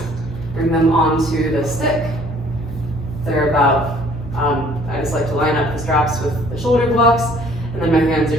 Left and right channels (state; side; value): noise; left; hum, 17 dB below the sound